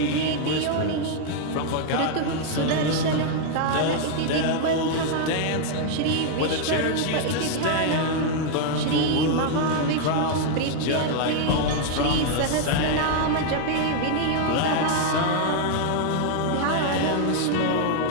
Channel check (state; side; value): different; both; correlation 0.00